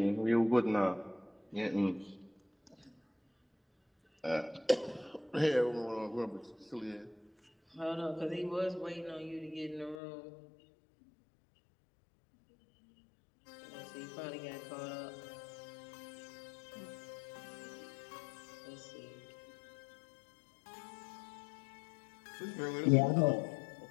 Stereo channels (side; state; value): right; drops out; at 10.0 s